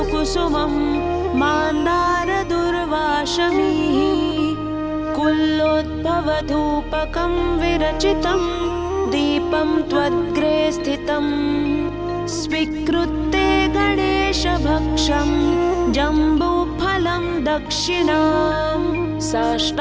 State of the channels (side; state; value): both; identical; correlation 1.00